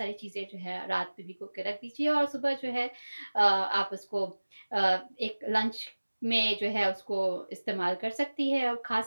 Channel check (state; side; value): inverted; both; correlation -1.00